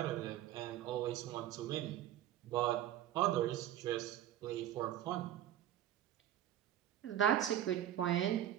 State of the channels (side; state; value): left; quieter; 11.9 dB